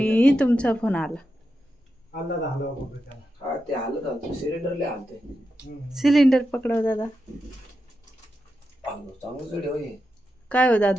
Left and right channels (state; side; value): normal; both; correlation 0.88